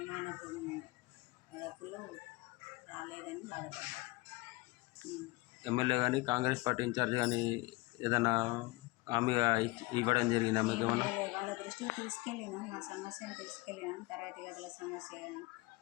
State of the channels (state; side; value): quieter; right; 22.4 dB